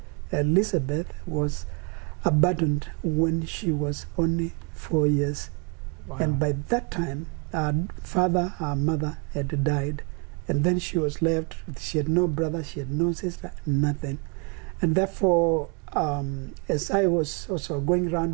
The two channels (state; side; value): quieter; left; 34.9 dB